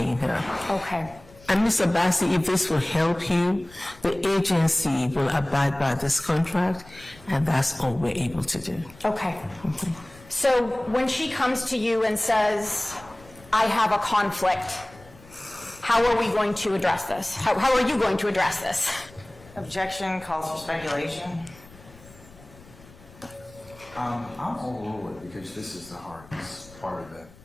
her. Okay. And Ms. Abbasi, if this will help you, the agency will abide by this contract, and that's all we're able to do. Okay. So when she comes to you and says, I have a conflict, how are we going to address this? How are you going to address this? Objection calls for speculation. I'm overrule it because this is the hardest part of the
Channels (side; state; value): left; noise; rumble, 23 dB below the sound